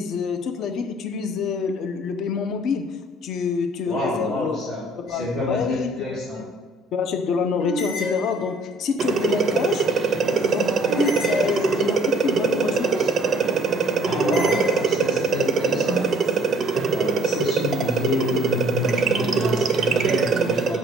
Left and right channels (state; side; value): normal; both; correlation 0.57